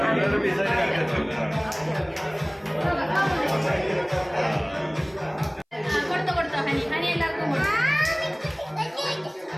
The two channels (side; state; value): both; identical; correlation 1.00